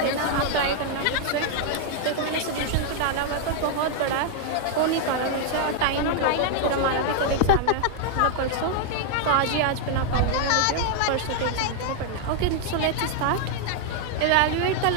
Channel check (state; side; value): different; both; correlation 0.00